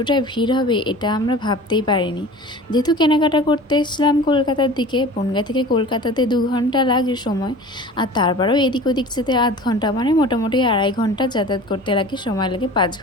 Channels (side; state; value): both; normal; correlation 0.40